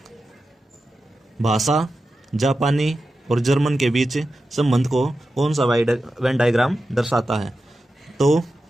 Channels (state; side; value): normal; both; correlation 0.91